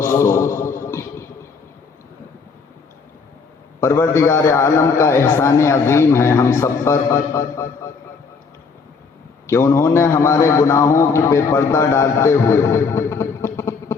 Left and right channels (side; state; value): right; quieter; 5.0 dB